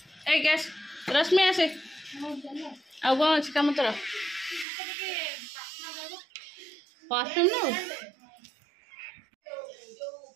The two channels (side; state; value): left; drops out; at 4.7 s